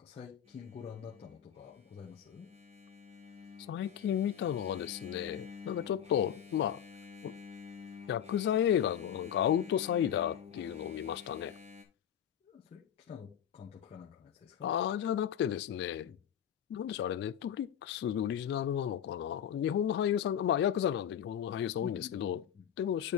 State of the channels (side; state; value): right; quieter; 9.6 dB